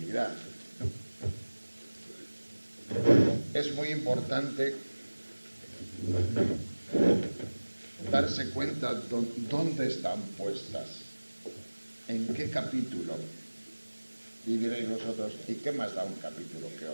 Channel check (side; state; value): both; inverted; correlation -1.00